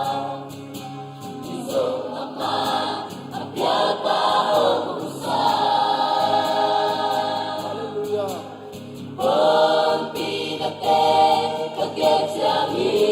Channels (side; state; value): both; identical; correlation 1.00